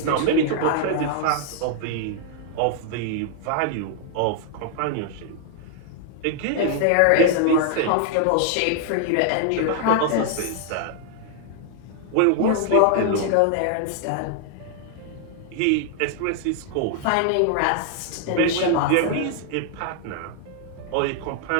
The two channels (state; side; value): different; both; correlation 0.00